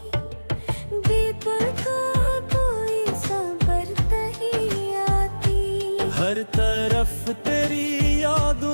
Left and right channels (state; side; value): inverted; both; correlation -1.00